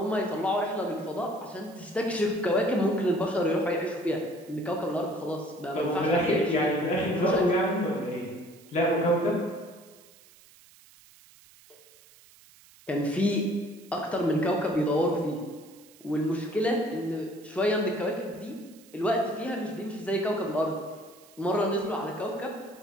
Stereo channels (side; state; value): right; noise; hiss, 25 dB below the sound